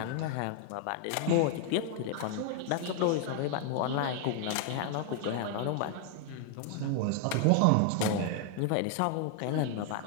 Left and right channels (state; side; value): different; both; correlation 0.00